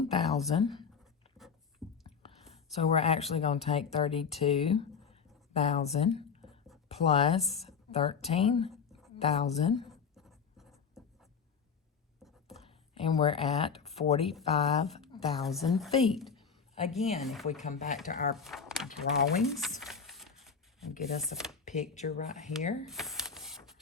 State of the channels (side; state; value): right; quieter; 6.1 dB